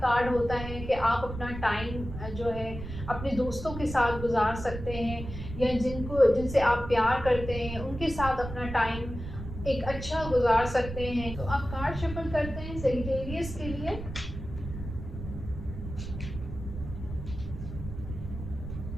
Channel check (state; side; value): noise; right; rumble, 9 dB below the sound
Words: होता है कि आप अपना टाइम जो है अपने दोस्तों के साथ गुजार सकते हैं या जिनसे आप प्यार करते हैं उनके साथ अपना टाइम एक अच्छा गुजार सकते हैं। तो आप कार्ड शफल करते हैं सेजिटेरियस के लिए।